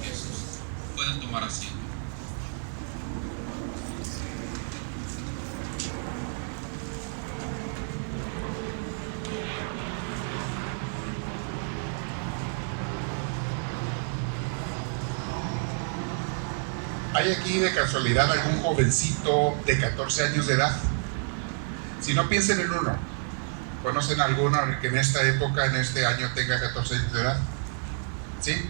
Jesús. Pueden tomar asiento. ¿Hay aquí de casualidad algún jovencito de 14 años de edad? Si no, piensen en uno. ¿Conocen alguno que en esta época, en este año, tenga 14 años de edad? ¿Sí?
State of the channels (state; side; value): silent; left; 59 dB below the other